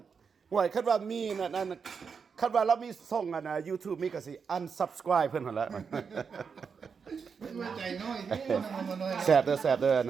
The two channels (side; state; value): left; quieter; 5.9 dB